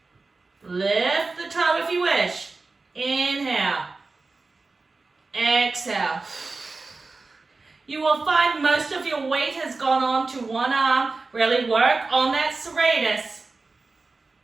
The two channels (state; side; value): quieter; left; 3.8 dB